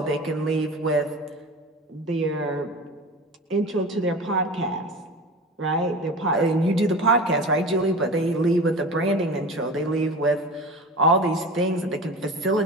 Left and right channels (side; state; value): both; normal; correlation 0.33